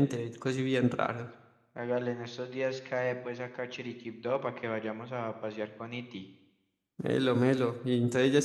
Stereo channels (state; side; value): identical; both; correlation 1.00